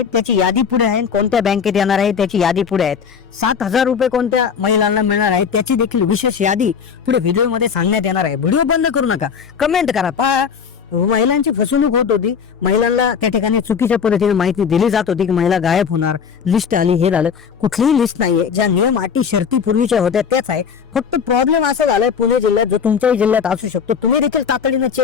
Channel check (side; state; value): right; quieter; 6.7 dB